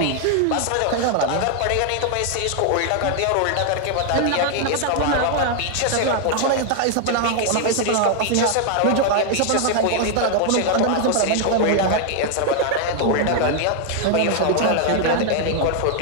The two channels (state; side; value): different; both; correlation 0.00